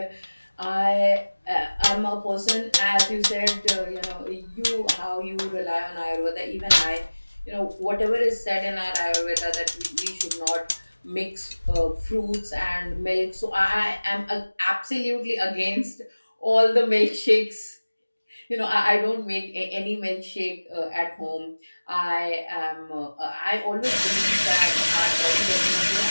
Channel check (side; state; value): both; inverted; correlation -1.00